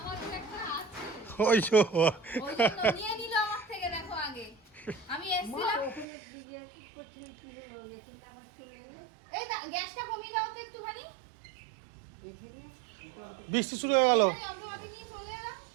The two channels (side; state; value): left; drops out; at 6.1 s